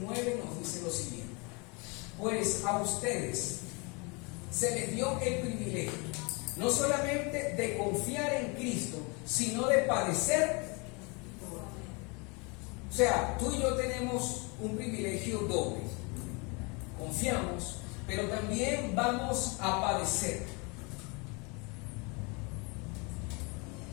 nos dice lo siguiente: pues a ustedes se les dio el privilegio no solamente de confiar en Cristo, sino de padecer. O sea, tú y yo tenemos un privilegio doble. Confiamos, pero también vamos a padecer.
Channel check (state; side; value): quieter; right; 30.4 dB